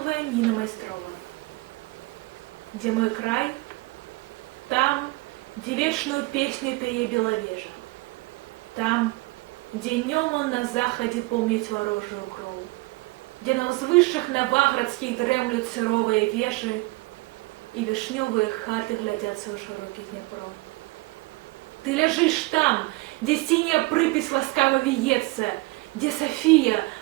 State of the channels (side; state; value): left; quieter; 23.3 dB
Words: Ніна Майстрова. Где мой край? Там, где вечную песню пее беловежа. Там, где днем он на заходе помнит ворожую кроў. Где на ўзвышшах наваградскіх дрэмлют сыровыя вежы и вишневые хаты глядятся ў широкі Днепро. Ты ляжишь там, где синяя припись ласкаво виется, где София